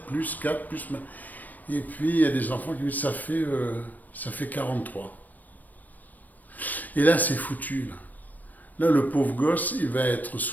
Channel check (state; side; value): late; right; 0.084 ms